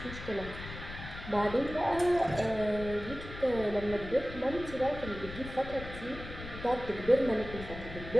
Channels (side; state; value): left; noise; rumble, 11 dB below the sound